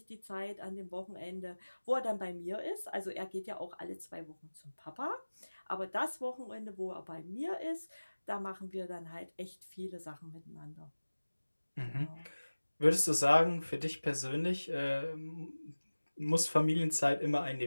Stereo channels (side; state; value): both; inverted; correlation -1.00